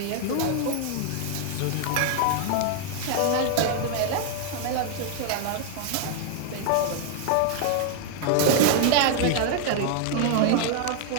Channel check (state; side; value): different; both; correlation 0.00